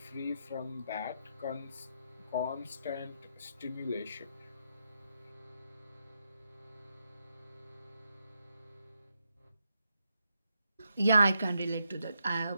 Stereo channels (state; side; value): inverted; both; correlation -0.81